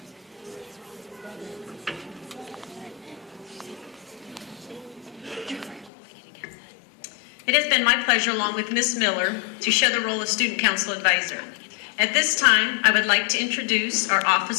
It has been my pleasure, along with Ms. Miller, to share the role of Student Council Advisor. At this time, I would like to introduce our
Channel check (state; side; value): drops out; right; at 5.9 s